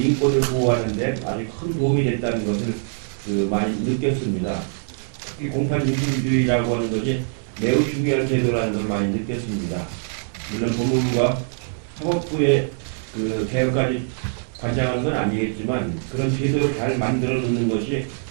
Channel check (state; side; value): silent; left; digital silence